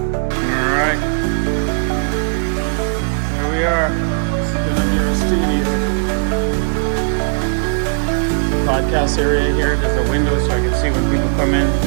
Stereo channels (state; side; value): silent; left; digital silence